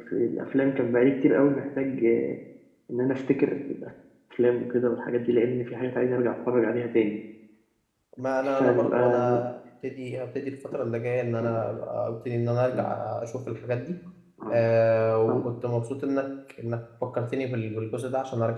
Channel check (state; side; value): identical; both; correlation 1.00